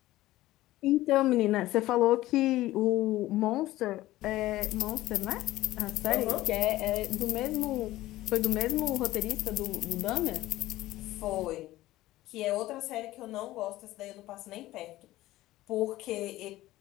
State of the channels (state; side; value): quieter; right; 16.4 dB